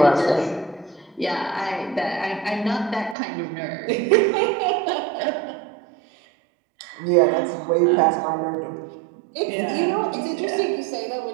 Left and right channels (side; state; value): left; drops out; at 3.2 s